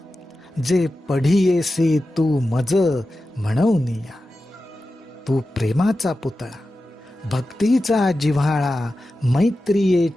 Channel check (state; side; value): normal; both; correlation 0.93